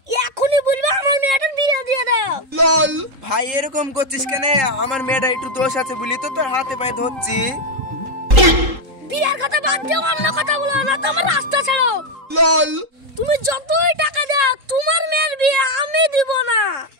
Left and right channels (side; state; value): left; late; 3.8 ms